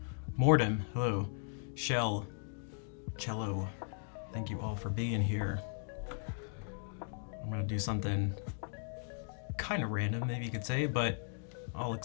Mordem, hello, Shell, Cello, thank you all for being here. I'm gonna do something kind of random, maybe you could say, but I'll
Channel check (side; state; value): right; silent; 53 dB below the other